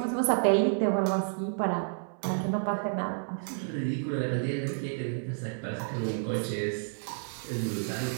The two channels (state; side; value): silent; left; 58 dB below the other